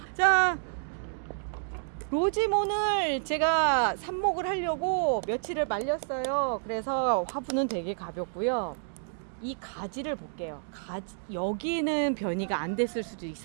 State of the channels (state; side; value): silent; left; digital silence